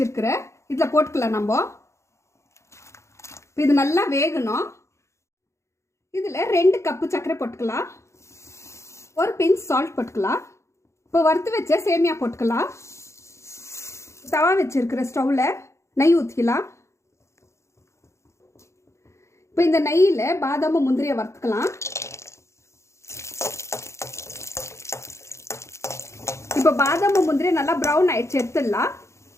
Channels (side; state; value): right; late; 0.14 ms